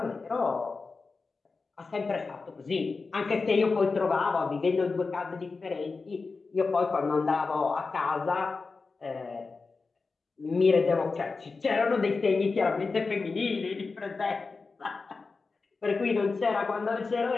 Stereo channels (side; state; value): right; quieter; 4.2 dB